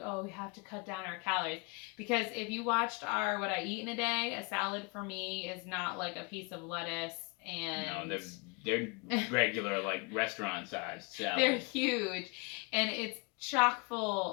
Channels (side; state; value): right; quieter; 30.1 dB